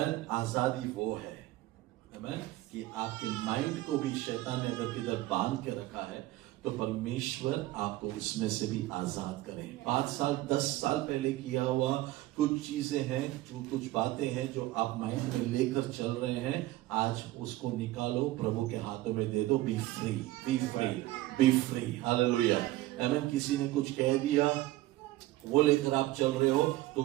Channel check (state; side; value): quieter; left; 16.8 dB